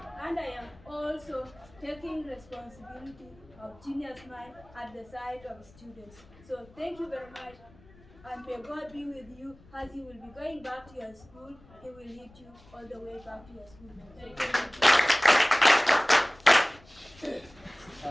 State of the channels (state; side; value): noise; left; rumble, 25 dB below the sound